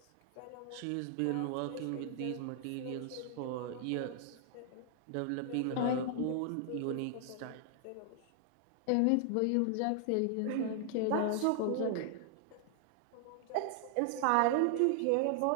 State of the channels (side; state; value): both; different; correlation 0.00